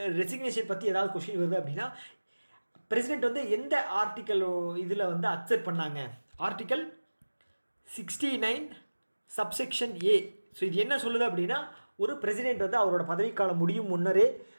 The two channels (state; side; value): inverted; both; correlation -1.00